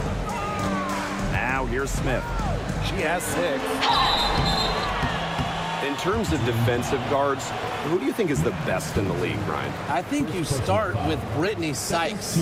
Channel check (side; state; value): both; identical; correlation 1.00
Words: Now here's Smith. She has 6. In terms of defensive guards, who do you think is the best in the league, Ryan? I think you start with Brittany Sykes.